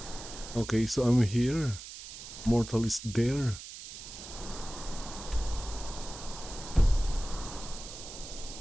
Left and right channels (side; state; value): right; noise; hiss, 12 dB below the sound